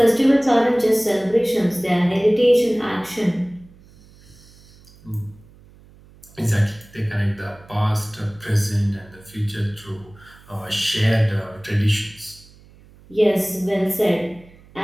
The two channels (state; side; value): noise; right; hum, 25 dB below the sound